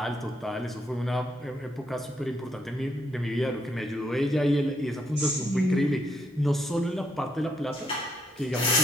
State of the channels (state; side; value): normal; both; correlation 0.75